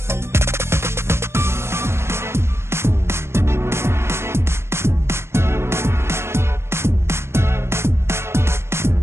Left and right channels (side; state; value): left; late; 0.12 ms